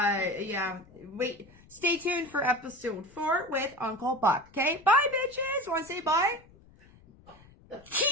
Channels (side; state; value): left; noise; rumble, 26 dB below the sound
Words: yeah, wait. Stay tuned for episode 4 with Uncle Buck. Okay? Bye, bitches. Want to say bye?